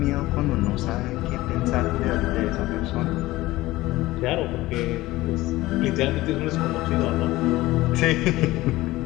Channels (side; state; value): right; quieter; 18.0 dB